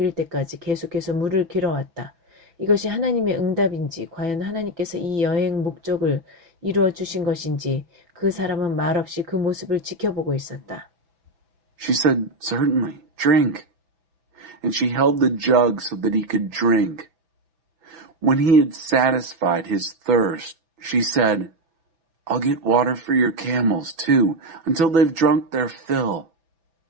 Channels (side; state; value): left; late; 6.0 ms